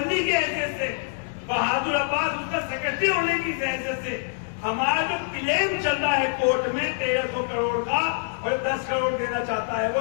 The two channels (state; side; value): silent; right; digital silence